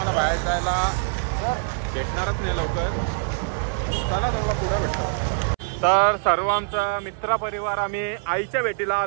बाहेर जायला भेटणारच नाही लवकर. चला तुम्हाला पुढे भेटतो. तर सर्व आमचा मित्र परिवार आम्ही आईच्या भेटीला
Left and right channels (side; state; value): left; silent; 63 dB below the other